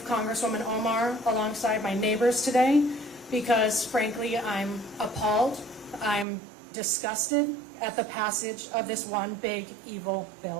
Congresswoman Omar, alongside my neighbors today because, frankly, I'm appalled, I'm disgusted at the passage of this one big, evil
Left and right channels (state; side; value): drops out; left; at 6.2 s